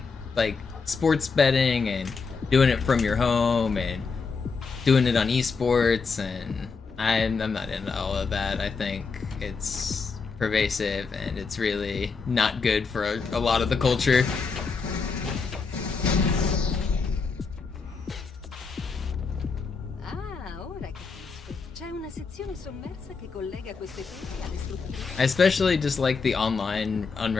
like sports betting and doing it from your home and doing it on esports, and I'm not into all of that. I think it's pervasive and it's really not good for a lot of the culture. I especially just like the online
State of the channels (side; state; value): right; quieter; 4.9 dB